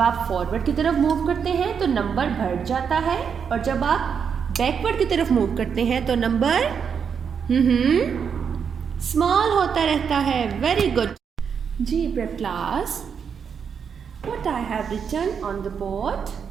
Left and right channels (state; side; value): quieter; left; 6.9 dB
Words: आप फॉरवर्ड की तरफ मूव करते हैं तो नंबर बढ़ जाता है, और जब आप बैकवर्ड की तरफ मूव करते हैं तो नंबर स्मॉल होता रहता है. Very good. JEE prep class, what I have written on the board,